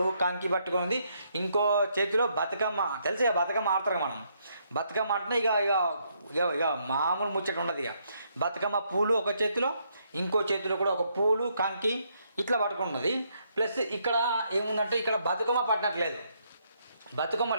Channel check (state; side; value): inverted; both; correlation -0.74